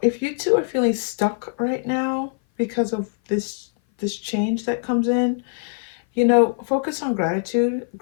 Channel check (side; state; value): right; silent; 58 dB below the other